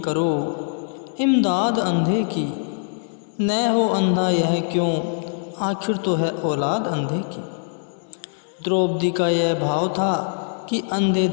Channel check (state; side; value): silent; right; digital silence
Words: करो इमदाद अंधे की, न हो अंधा यह क्यों, आखिर तो है औलाद अंधे की। द्रौपदी का यह भाव था कि अंधे